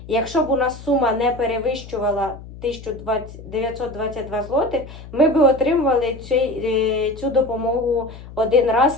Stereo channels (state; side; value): noise; left; hum, 15 dB below the sound